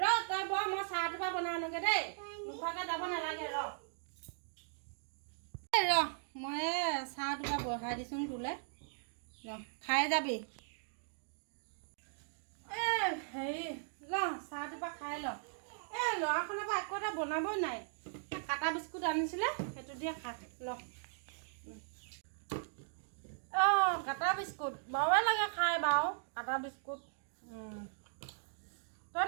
তই বৰ মই চাহ টোপা বনাই আনোগে দেই নোখোৱাকে যাব নালাগে মই চাহ টোপা বহাই দিছোঁ তোলে খাই যাবি হেৰি চাহ টোপা খাই ল ল'ৰাখনৰ পৰা একো এটা বনাবই নাই কাটা বিস্কুট আনিছিলে সেইটো দিয়ে খা ল কাটা বিস্কুট বাৰে লাগে খাই বাৰু কাটা বিস্কুট তই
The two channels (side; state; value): left; silent; digital silence